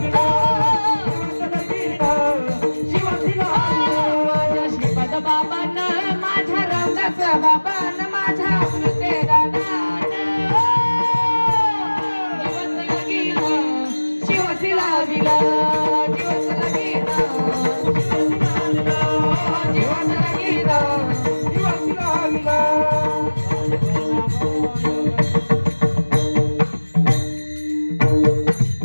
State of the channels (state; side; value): inverted; both; correlation -1.00